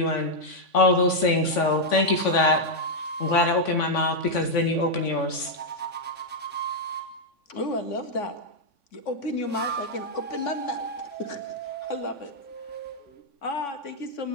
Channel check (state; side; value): late; right; 3.5 ms